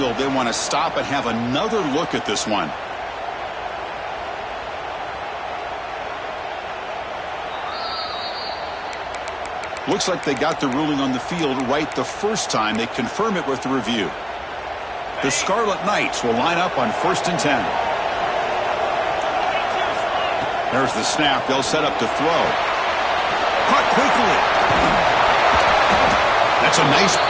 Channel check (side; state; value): both; identical; correlation 1.00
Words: they want to stop and have another look at this one. Looks like they got the ruling on the field right the first time. They confirm it with the review. The Scarlet Knights will line up on 1st and 10. There's the snap. They'll set up to throw. Caught quickly. That's a nice